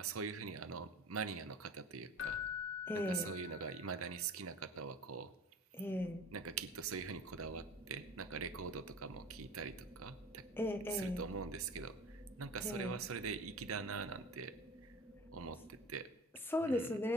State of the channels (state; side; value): normal; both; correlation 0.39